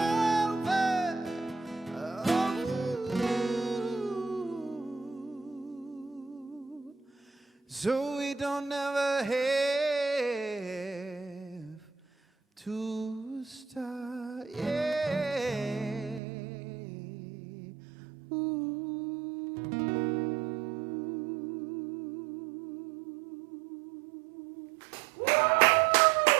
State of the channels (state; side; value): drops out; left; at 16.2 s